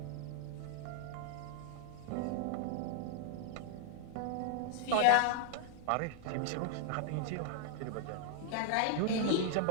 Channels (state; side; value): different; both; correlation 0.00